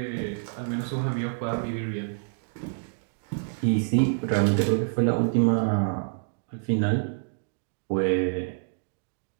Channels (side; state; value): left; silent; digital silence